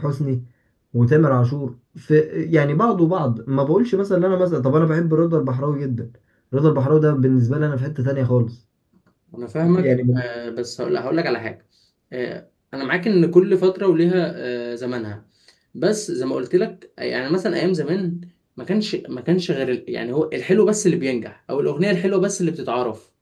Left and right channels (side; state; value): both; identical; correlation 1.00